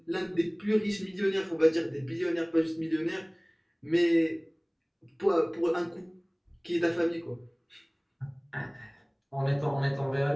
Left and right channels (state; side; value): identical; both; correlation 1.00